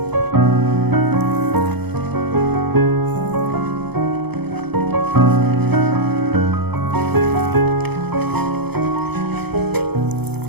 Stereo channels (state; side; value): late; left; 0.98 ms